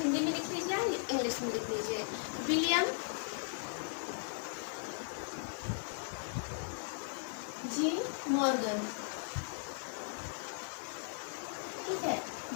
में लिख लीजिए या इंग्लिश में लिख लीजिए, विलियम जी मॉर्गन। ठीक है,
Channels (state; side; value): silent; right; 53 dB below the other